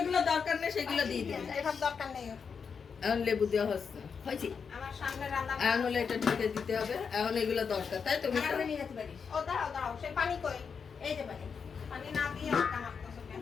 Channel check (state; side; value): quieter; right; 6.1 dB